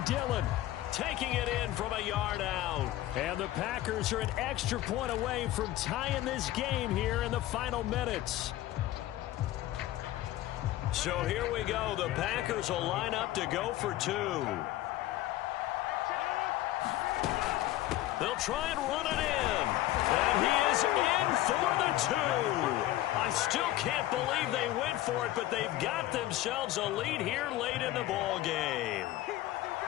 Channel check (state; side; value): quieter; right; 15.1 dB